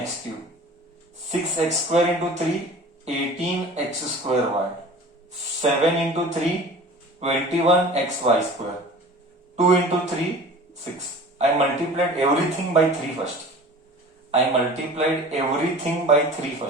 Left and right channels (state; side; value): normal; both; correlation 0.41